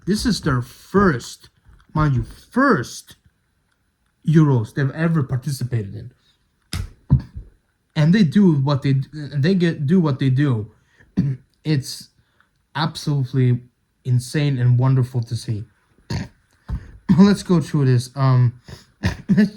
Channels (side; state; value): both; identical; correlation 1.00